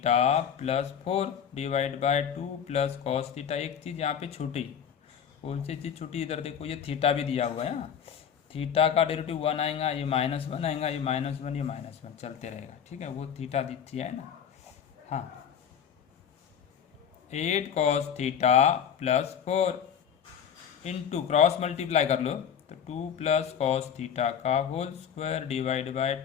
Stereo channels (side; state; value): right; quieter; 8.1 dB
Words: plus 4 divide by 2 plus cos theta. एक चीज़ यहाँ पे छूटी, कौन सी चीज़ छूटी? इधर देखो ये थीटा भी दिया हुआ है ना, थीटा का डेरिवेटिव 1 आएगा, ये -1 आएगा, ये -1 ये -1 चलते रहेगा। ठीक है, वो थीटा दिखती है ना। हाँ 8 cos theta plus 4 into cross multiply कर लो तो 2 प्लस cos थीटा का whole square divide by